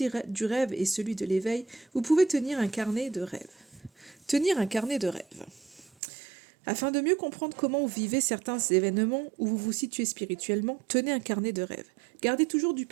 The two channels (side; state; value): left; drops out; at 5.9 s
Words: rêve et celui de l'éveil, vous pouvez tenir un carnet de rêves. Tenir un carnet de rêves. Afin de mieux comprendre comment vous vivez certains événements, où vous vous situez spirituellement, tenez un carnet de rêves. Gardez toujours du